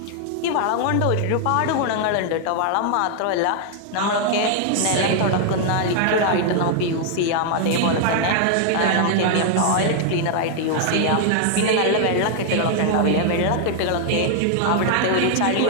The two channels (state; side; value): different; both; correlation 0.00